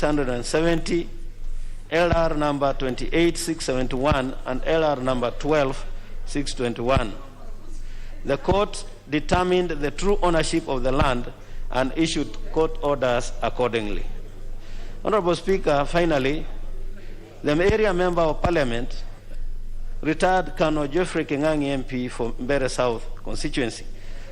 LR number 28671, and LR number 12621. The court determined the true ownership of the land and issued court orders accordingly. Honorable Speaker, finally, the area member of Parliament, retired Colonel Geoffrey Kingangi MP for Mbeere South constituency,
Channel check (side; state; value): both; identical; correlation 1.00